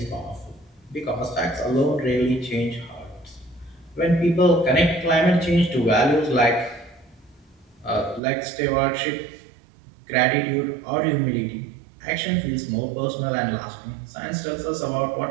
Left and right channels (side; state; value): left; drops out; at 8.2 s